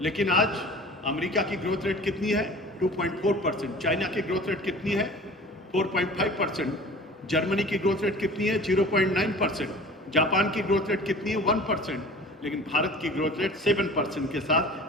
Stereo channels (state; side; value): normal; both; correlation 0.42